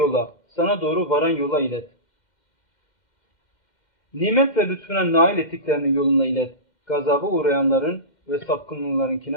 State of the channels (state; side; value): late; right; 2.1 ms